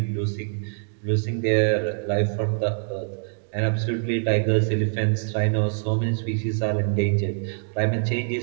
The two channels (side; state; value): left; silent; digital silence